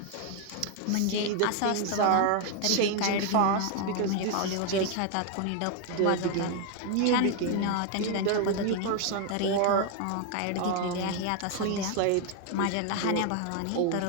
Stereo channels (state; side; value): different; both; correlation 0.01